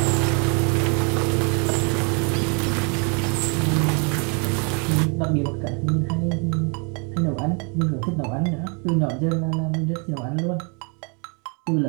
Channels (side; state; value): left; quieter; 35.6 dB